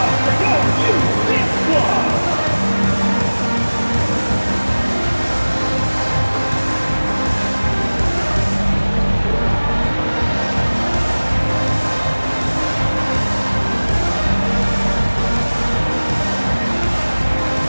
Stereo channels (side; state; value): both; inverted; correlation -1.00